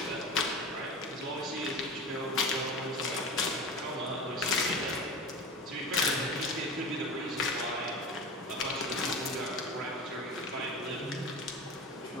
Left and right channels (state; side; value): normal; both; correlation 0.31